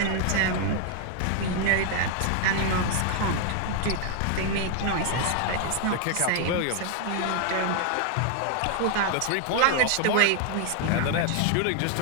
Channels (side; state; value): both; different; correlation 0.00